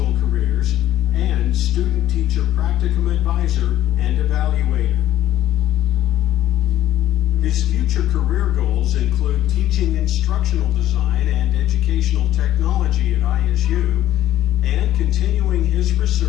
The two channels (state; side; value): quieter; right; 13.2 dB